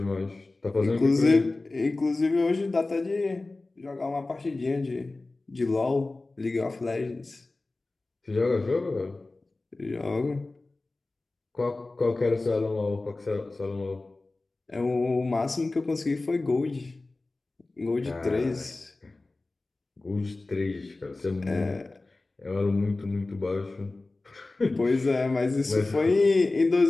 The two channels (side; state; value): right; quieter; 3.2 dB